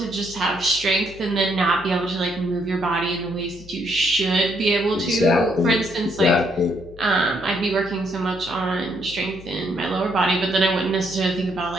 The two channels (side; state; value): left; noise; hum, 19 dB below the sound